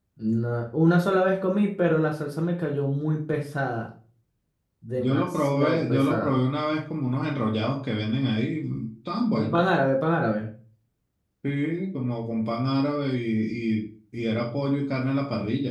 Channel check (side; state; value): both; identical; correlation 1.00